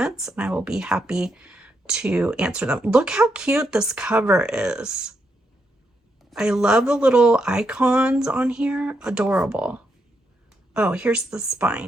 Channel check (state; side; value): normal; both; correlation 0.80